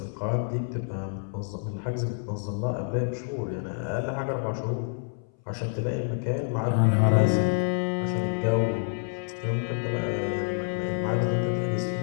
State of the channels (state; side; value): silent; right; 59 dB below the other